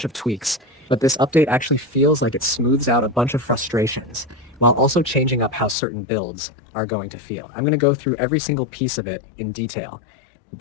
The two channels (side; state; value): right; drops out; at 5.8 s